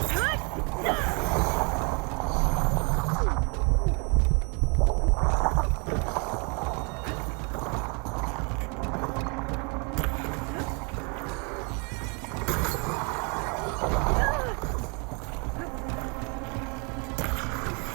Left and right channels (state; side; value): quieter; left; 33.6 dB